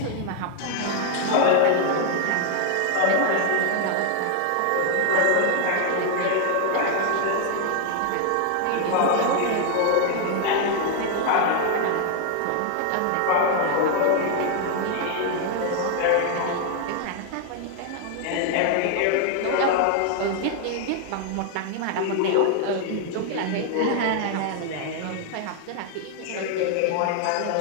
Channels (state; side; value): different; both; correlation 0.00